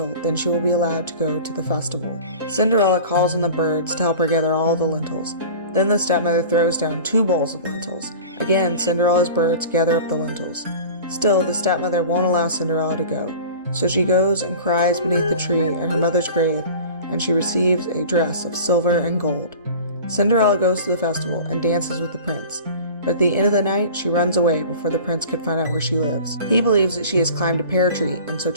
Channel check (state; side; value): inverted; both; correlation -0.39